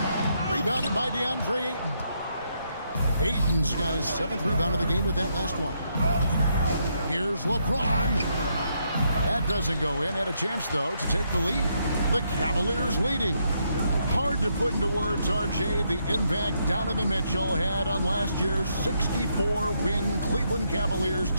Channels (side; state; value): both; inverted; correlation -0.76